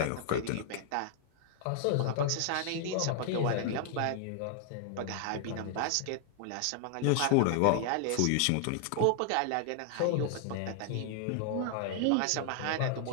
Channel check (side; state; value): both; different; correlation 0.00